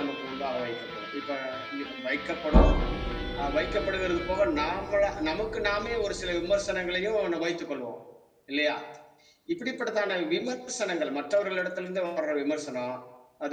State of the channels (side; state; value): both; identical; correlation 1.00